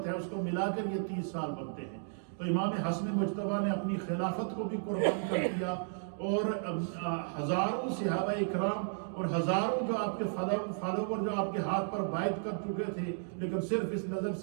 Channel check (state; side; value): silent; left; digital silence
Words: ہے اس کو ملا کر یہ 30 سال بنتے ہیں. تو امام حسن مجتبی نے اپنی خلافت کو بھی قربان کر دیا، اور ہزاروں صحابہ اکرام اور ہزاروں جو آپ کے فالوور جو آپ کے ہاتھ پر بیعت کر چکے تھے، لیکن صرف اس نظر